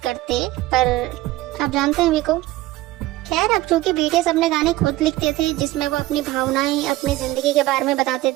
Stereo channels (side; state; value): left; quieter; 17.3 dB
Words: करते, पर आप जानते हैं वी को। खैर, अब चूंकि बीटीएस अपने गाने खुद लिखते थे जिसमें वो अपनी भावनाएं, अपनी जिंदगी के बारे में बताते